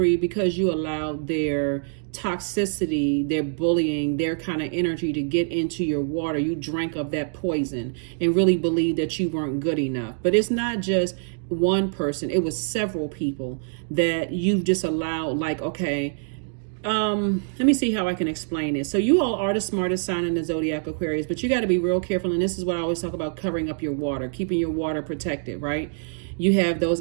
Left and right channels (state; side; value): silent; left; digital silence